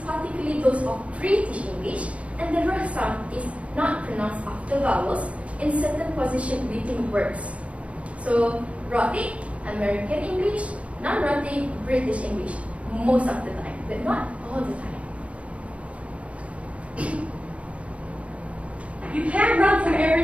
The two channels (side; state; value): left; late; 0.063 ms